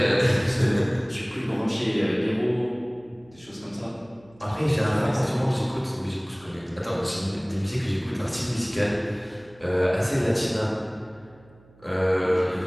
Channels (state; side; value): noise; right; hum, 27 dB below the sound